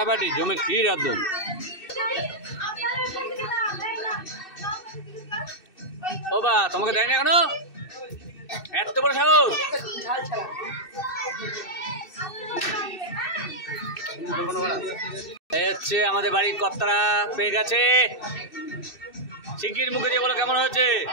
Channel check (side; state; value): right; late; 2.6 ms